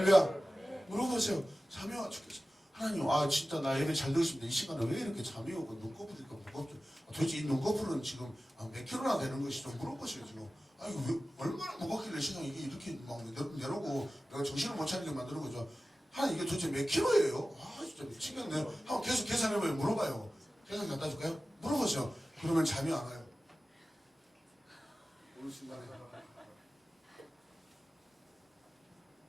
물어보세요. 잠이 와 죽겠어. 하나님, 진짜 나 예배 잘 들었습니다. 이 시간에 왜 이렇게 잠이 오고 눈꺼풀이가 무겁죠? 도대체 이 눈꺼풀은 지금 몇 킬로나 되는 것이 좀 물어보세요, 지금. 이거 왜, 얼마나 무겁길래 세상에 이게 이렇게 막 내려고 내가 정신을 못 차리게 만드는 거죠. 하나님, 이게 도대체 몇 킬로예요? 진짜 미치겠네. 한번 계속 계산해봐요. 물어봐요. 계산 갖다 줄까요? 물어보세요. 그러면 잠이 안 와요. 어느 순간에.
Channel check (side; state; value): both; normal; correlation 0.95